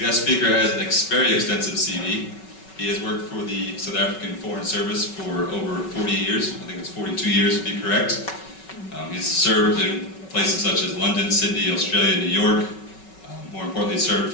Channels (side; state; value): right; late; 5.3 ms